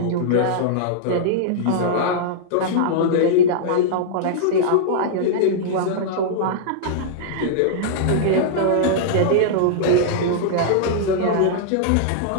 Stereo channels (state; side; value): different; both; correlation -0.02